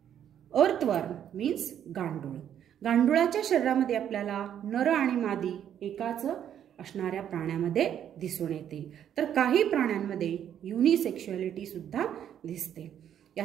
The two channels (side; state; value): left; quieter; 9.7 dB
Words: earthworm means गांडूळ. गांडुळाच्या शरीरामध्ये आपल्याला नर आणि मादी एकाच असणाऱ्या प्राण्यामध्ये दिसून येते, तर काही प्राण्यांमध्ये युनिसेक्शुअलिटी सुद्धा दिसते.